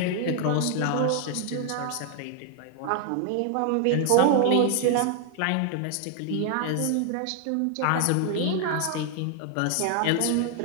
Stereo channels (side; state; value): both; different; correlation 0.00